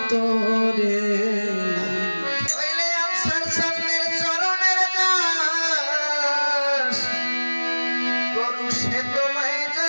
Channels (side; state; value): both; inverted; correlation -1.00